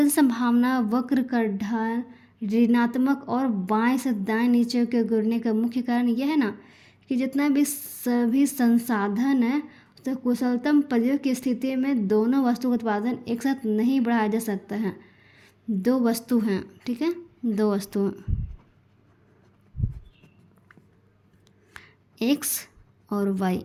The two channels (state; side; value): identical; both; correlation 1.00